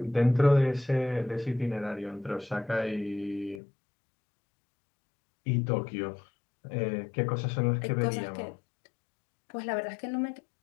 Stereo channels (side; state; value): right; drops out; at 3.6 s